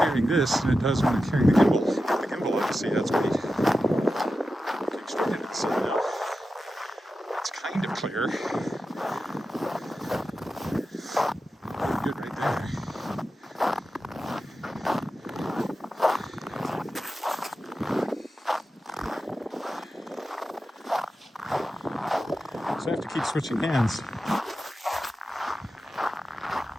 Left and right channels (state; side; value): normal; both; correlation 0.92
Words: this than it does when I'm carrying the gimbal. The gimbal, you see, that's weight. Looking straight into the sun now. It's kind of clear. Good right there. So I have to keep switching hands.